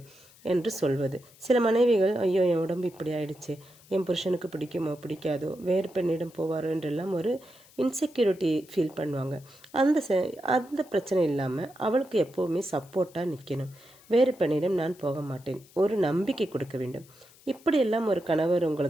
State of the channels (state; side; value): noise; left; hiss, 26 dB below the sound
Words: என்று சொல்வது. சில மனைவிகள், ஐயோ என் உடம்பு இப்படி ஆயிடுச்சு, என் புருஷனுக்கு பிடிக்குமோ பிடிக்காதோ, வேறு பெண்ணிடம் போவாரோ என்றெல்லாம் ஒரு இன்செக்யூரிட்டி ஃபீல் பண்ணுவாங்க. அந்த பிரச்சனை இல்லாமல் அவளுக்கு எப்போவுமே சப்போர்ட்டாக நிற்கணும். வேறு பெண்ணிடம் நான் போக மாட்டேன், ஒரு நம்பிக்கை கொடுக்க வேண்டும். இப்படியெல்லாம் ஒரு கணவர்